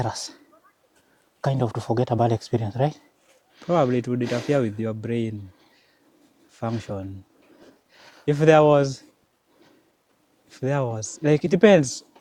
kind of, to forget a bad experience, right? Probably it would interfere with your brain function. If there was, like, it depends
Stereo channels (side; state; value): both; identical; correlation 1.00